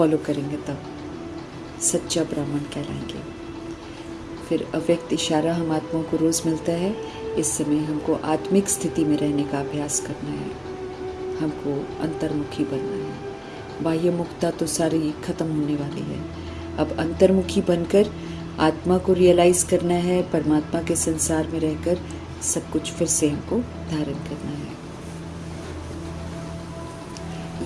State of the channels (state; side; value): identical; both; correlation 1.00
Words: करेंगे तब सच्चा ब्राह्मण कहलाएंगे। फिर अव्यक्त इशारा हम आत्माओं को रोज़ मिलता है। इस समय हमको आत्मिक स्थिति में रहने का अभ्यास करना है, हमको अंतर्मुखी बनना है। बाह्य मुक्ता तो सारी खत्म होने वाली है। अब अंतर्मुखी बनकर आत्मा को रियलाइज़ करना है, परमात्मा के संसार में रहकर सब कुछ फिर से हमको धारण करना है।